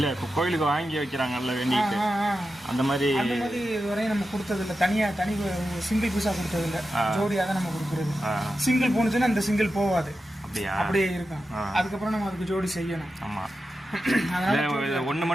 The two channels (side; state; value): both; normal; correlation 0.91